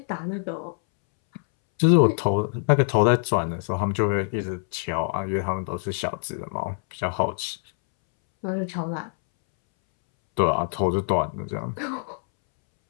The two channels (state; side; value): silent; right; 62 dB below the other